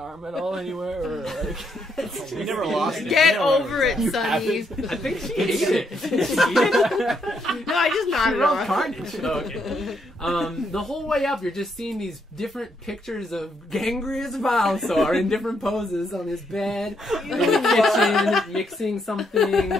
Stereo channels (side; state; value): both; normal; correlation 0.76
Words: at all anywore? Or like, We never lost it. Get Yeah, over it, Sunny. I think she ate it. Did she eat it? No, I just She nodded rolled off. carnage. Oh, okay. The whole way up, you're just seeing these different pictures of Gangrius Vilesaur in different poses on his bed, in the kitchen, mixing something.